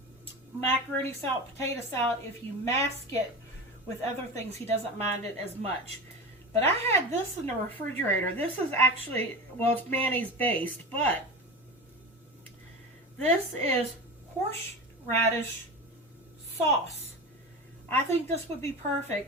macaroni salad, potato salad, if you mask it with other things, he doesn't mind it as much. But I had this in the refrigerator. This is actually, well, it's mayonnaise based, but This is horseradish sauce. I think this would be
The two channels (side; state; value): both; normal; correlation 0.27